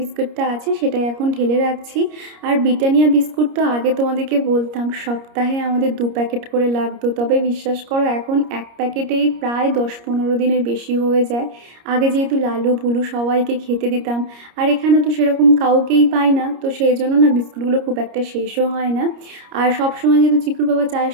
আছে সেটাই এখন ঢেলে রাখছি। আর ব্রিটানিয়া বিস্কুট তো আগে তোমাদেরকে বলতাম সপ্তাহে আমাদের 2 প্যাকেট করে লাগতো, তবে বিশ্বাস করো এখন এক প্যাকেটেই প্রায় 10-15 দিনের বেশি হয়ে যায়। আগে যেহেতু লালু ভুলু সবাইকে খেতে দিতাম, আর এখানে তো সেরকম কাউকেই পাই না, তো সেই জন্য না বিস্কুটগুলো খুব একটা শেষও হয় না। আর সবসময় যেহেতু চিকুর বাবা চায়ের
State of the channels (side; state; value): left; late; 30 ms